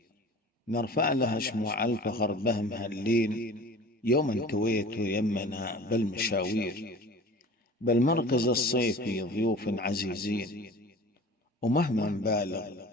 نرفع لها شموع الفخر بهم هاللين، يوم كويت يمنا بالمشاوير. بالمركز الصيفي ضيوف عزيزين، ومهما نبالغ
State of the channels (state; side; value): normal; both; correlation 0.41